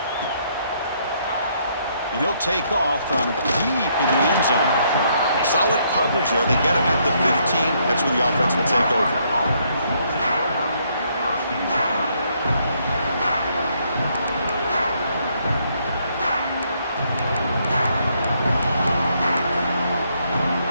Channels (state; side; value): inverted; both; correlation -0.71